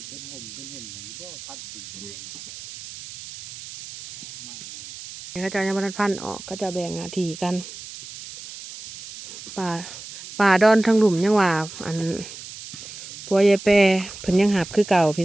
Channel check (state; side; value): noise; right; hiss, 14 dB below the sound